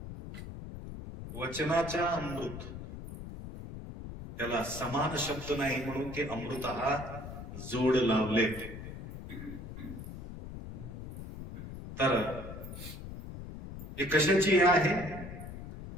वचनाचा अमृत, त्याला समान शब्द नाही म्हणून ते अमृत हा जोड लावले. तर हे कशाची आहे?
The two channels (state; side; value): noise; left; rumble, 10 dB below the sound